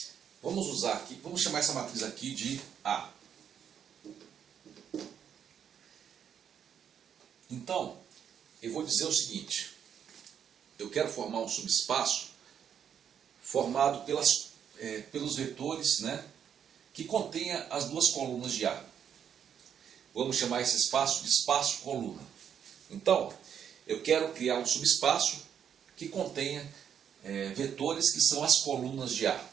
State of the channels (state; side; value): quieter; left; 8.4 dB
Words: Vamos usar aqui, vamos chamar essa matriz aqui de A. Então, eu vou dizer o seguinte, eu quero formar um subespaço formado pelos vetores, né, que contenha as duas colunas de A. Vamos chamar esse espaço de espaço-coluna. Então, eu quero criar um subespaço que contenha vetores que são as colunas de A,